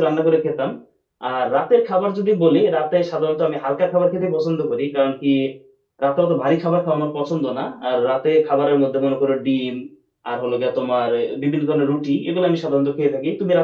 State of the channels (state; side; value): identical; both; correlation 1.00